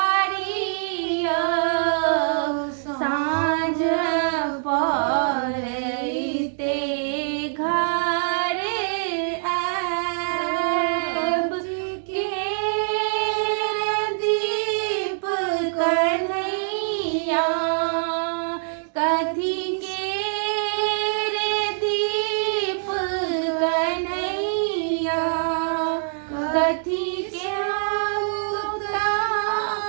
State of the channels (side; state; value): left; silent; digital silence